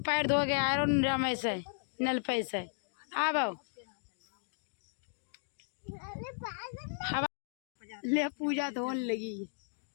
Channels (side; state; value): right; silent; digital silence